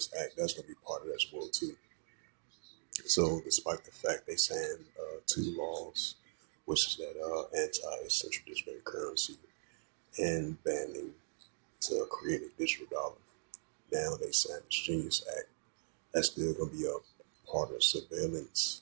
Act, that's going to be part of that as well too. So, despite the fact they signed two laws, which is that anti-central bank currency and banning to create a digital dollar, now they signed this Genius Act. That's still going to be a part of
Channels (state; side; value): silent; left; digital silence